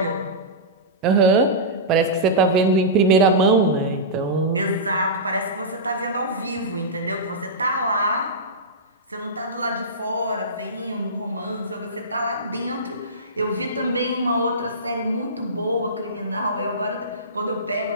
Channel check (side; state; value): both; normal; correlation -0.17